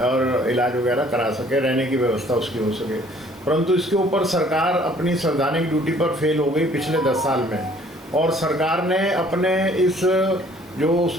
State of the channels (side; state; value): both; normal; correlation 0.57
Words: और इलाज वगैरह करा सके, रहने की व्यवस्था उसकी हो सके। परंतु इसके ऊपर सरकार अपनी संवैधानिक ड्यूटी पर फेल हो गई पिछले 10 साल में, और सरकार ने अपने इस जो